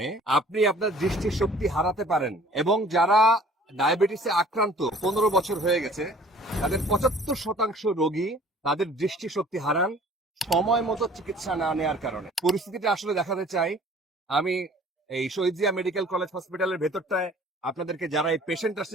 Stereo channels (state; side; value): normal; both; correlation 0.52